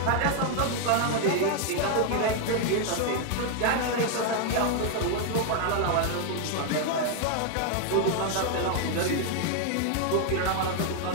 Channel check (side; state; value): both; different; correlation 0.00